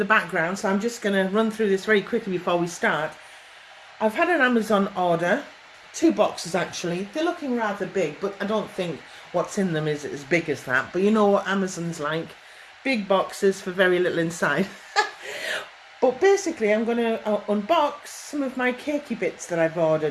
background, so I'm just going to run through this very quickly before we start. I've had an Amazon order, 2 boxes actually. They're looking rather big, but I don't think what's in them is as big as that. But you know what Amazon's like. Big boxes for very little inside. But basically I'm going to unbox some of my cakey bits that I've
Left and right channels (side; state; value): both; identical; correlation 1.00